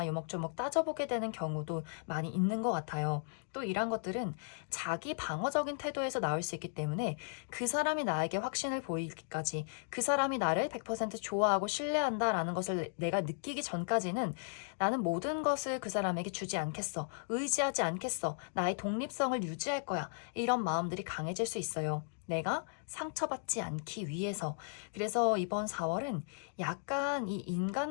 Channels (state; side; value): silent; right; digital silence